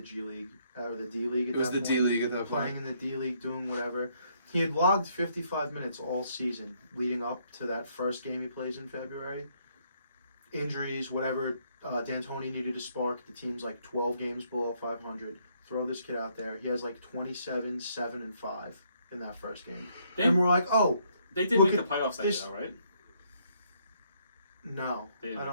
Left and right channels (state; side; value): inverted; both; correlation -0.70